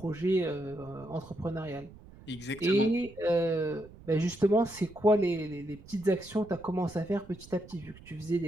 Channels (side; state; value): right; noise; rumble, 20 dB below the sound